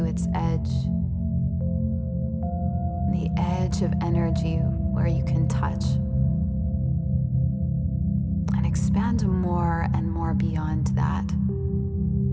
its edge. The edge of energy where you can touch. And expand more and more beyond that.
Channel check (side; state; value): both; identical; correlation 1.00